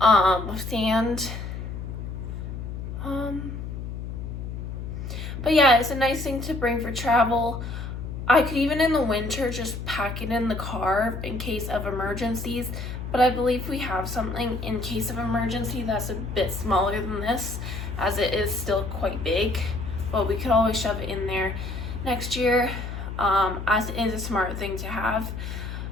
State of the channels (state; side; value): noise; left; hum, 7 dB below the sound